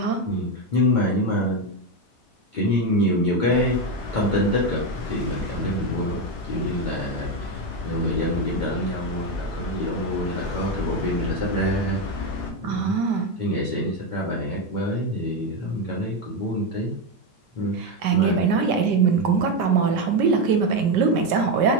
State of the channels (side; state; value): both; normal; correlation 0.09